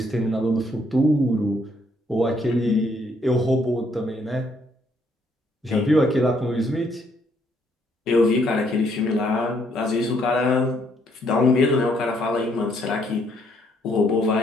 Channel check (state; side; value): normal; both; correlation 0.69